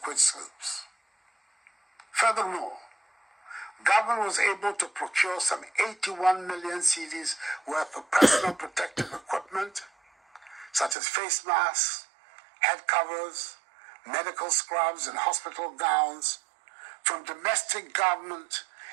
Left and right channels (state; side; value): drops out; left; at 11.0 s